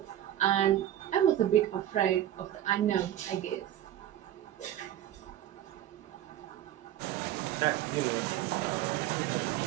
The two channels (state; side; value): quieter; left; 12.1 dB